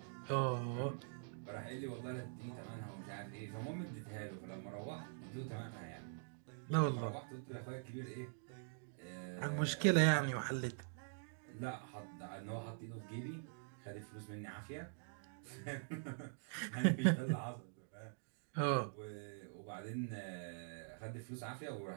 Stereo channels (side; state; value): left; silent; digital silence